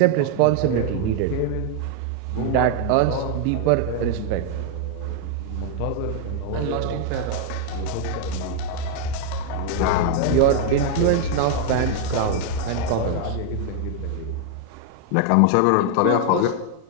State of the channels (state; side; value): different; both; correlation 0.00